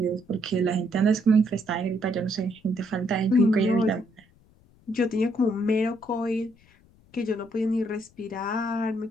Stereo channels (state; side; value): noise; left; rumble, 30 dB below the sound